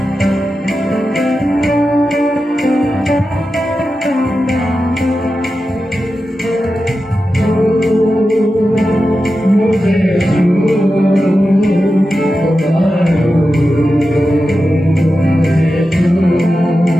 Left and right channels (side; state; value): both; normal; correlation 0.91